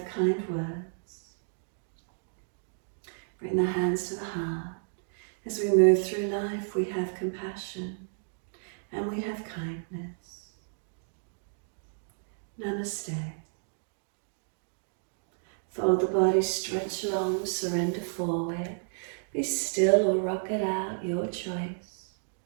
kind words. Bring the hands to the heart. As we move through life, we have compassion and we have kindness. Namaste. Fold the body, stretch long, surrender forward. Be still or rock it out, your choice.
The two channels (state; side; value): silent; left; digital silence